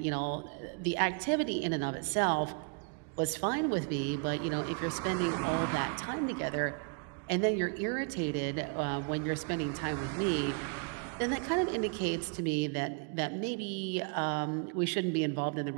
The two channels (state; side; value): quieter; left; 38.4 dB